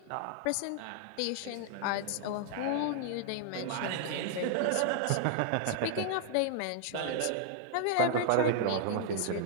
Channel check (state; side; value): different; both; correlation 0.00